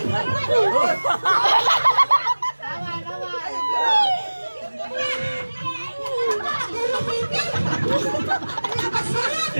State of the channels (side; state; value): both; inverted; correlation -1.00